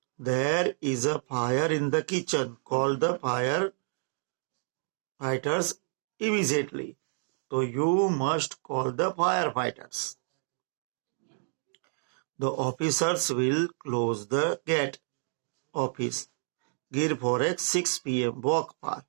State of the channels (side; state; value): left; silent; digital silence